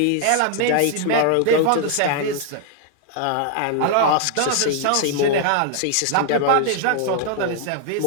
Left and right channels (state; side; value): different; both; correlation 0.00